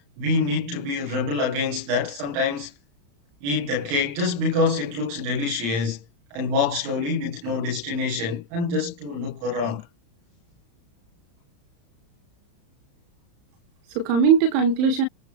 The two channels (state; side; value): late; left; 35 ms